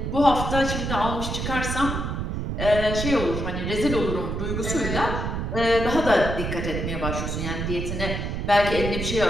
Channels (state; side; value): noise; right; rumble, 3 dB below the sound